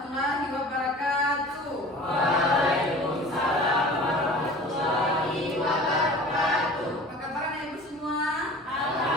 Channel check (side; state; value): both; normal; correlation 0.41